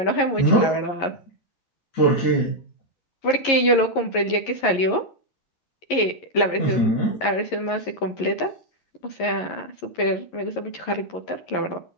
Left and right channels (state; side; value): late; right; 11 ms